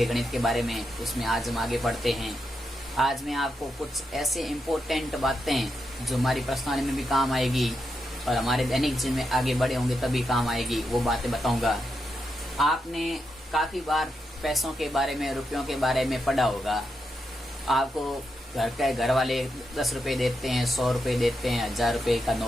गणित के बारे में, उसमें आज हम आगे बढ़ते हैं। आज मैं आपको कुछ ऐसे इम्पोर्टेंट बातें जो हमारी पर्सनालिटी में भी काम आएगी और हमारे दैनिक जीवन में आगे बढ़े होंगे तभी काम आएगी, वो बातें बताऊंगा। आपने काफ़ी बार पैसों के बारे में, रुपयों के बारे में पढ़ा होगा। आपको घर वाले 10 रुपये देते हैं, 100 रुपये देते हैं, 1000 रुपये का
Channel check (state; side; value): normal; both; correlation 0.84